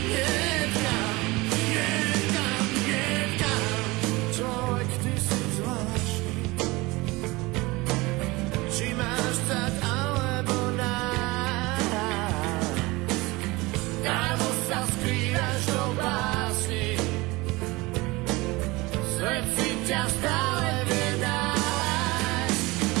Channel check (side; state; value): left; quieter; 22.5 dB